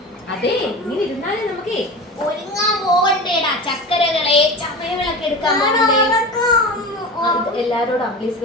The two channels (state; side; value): normal; both; correlation 0.30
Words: അതെ, ഇങ്ങനെ ഇരുന്നാലേ നമുക്കേ ഒരുങ്ങാൻ പോകണ്ടേടാ. ചക്കരകളെ, ചമയവിളക്ക് എടുക്കാൻ പോകണ്ടേ? എല്ലാരോടും അംബ്ലീസ്